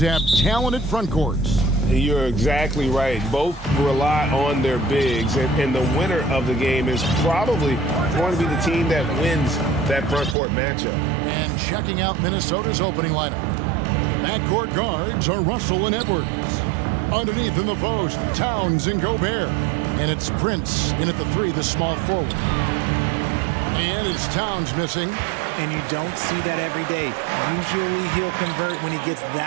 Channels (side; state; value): left; drops out; at 10.4 s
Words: talented front courts. You're exactly right. Both rely on their bigs, and the winner of the game is probably going to be the team that wins that front court matchup. And checking out Minnesota's opening lineup. Backcourt guards are Russell and Edwards. Underneath in the post, Towns and Gobert. And it's Prince in at the 3, the small forward. And it's Towns missing. And you don't see that every day. Usually he'll convert when he gets